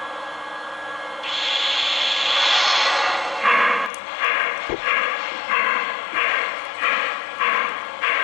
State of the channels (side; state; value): right; drops out; at 3.9 s